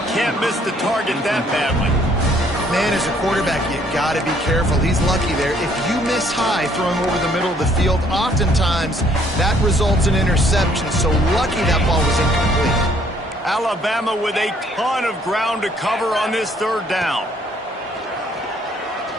Can't miss the target that badly. Man, as a quarterback, you got to be careful. He's lucky there. If you miss high throwing over the middle of the field, oftentimes that results in interception. So lucky that ball was incomplete. Alabama with a ton of ground to cover on this third down.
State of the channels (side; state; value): both; normal; correlation 0.64